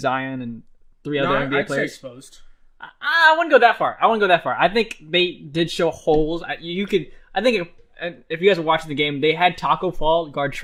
and 3 other NBA I'd say players. exposed. I wouldn't go that far. I think they did show holes. I think if you guys were watching the game, they had Taco Fall guard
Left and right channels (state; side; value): identical; both; correlation 1.00